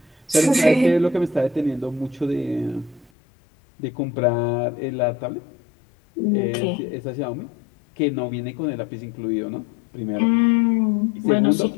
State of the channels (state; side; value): drops out; right; at 3.1 s